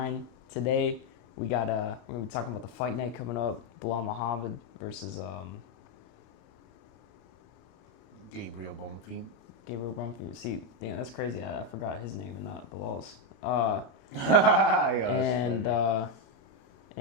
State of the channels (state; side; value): late; right; 30 ms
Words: Today we're gonna be talking about the fight night coming up. Bilal Muhammad versus Gabriel Bonfim. Gabriel Brumfield. See, damn, that's crazy. I forgot his name and not Bilal's. Uh, Yeah,